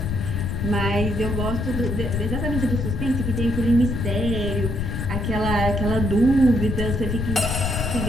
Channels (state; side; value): noise; left; rumble, 2 dB below the sound